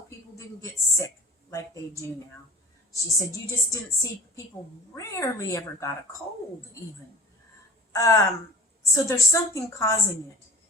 people didn't get sick like they do now. She said you just didn't see, people rarely ever got a cold even. So there's something causing it.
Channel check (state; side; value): normal; both; correlation 0.41